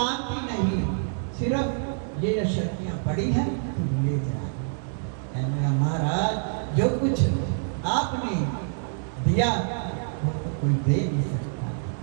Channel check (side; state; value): left; silent; digital silence